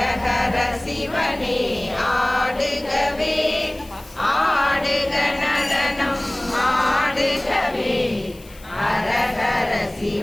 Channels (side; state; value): left; noise; hiss, 23 dB below the sound